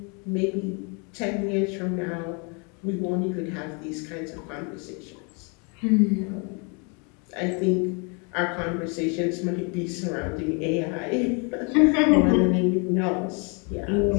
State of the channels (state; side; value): quieter; right; 34.1 dB